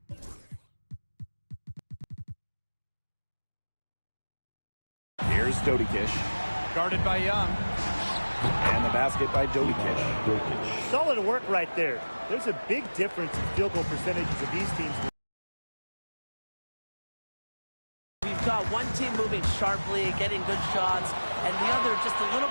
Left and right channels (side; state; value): both; inverted; correlation -1.00